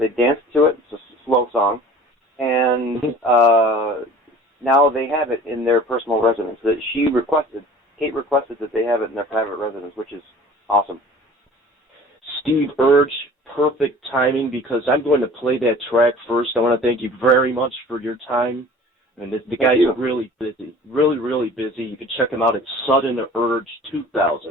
danced to it. It's a slow song. And now they have it in their personal residence. Kate requested that they have it in their private residence, which is awesome. SteveUrge perfect timing because I'm going to play that track first. I want to thank you very much for your time. And the guy's really busy, really busy. You can check him out at SteveUrge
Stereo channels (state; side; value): normal; both; correlation 0.45